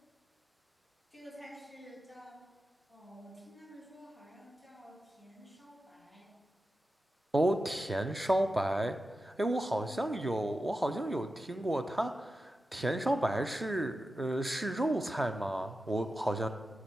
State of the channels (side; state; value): both; normal; correlation 0.91